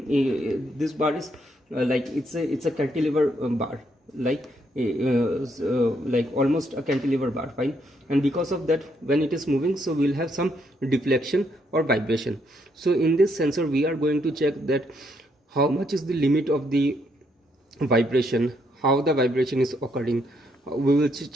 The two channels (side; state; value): both; normal; correlation 0.74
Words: bar is like it's a cantilever bar, like almost a cantilever bar, fine. And because of that, when it is moving, so we'll have some deflection or vibration. So in this sensor we are going to check that how much is the limit of the vibration, how the vibration is occurring, we will